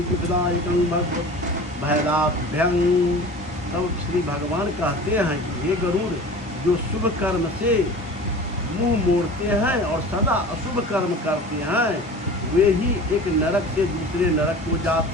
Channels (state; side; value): normal; both; correlation 0.38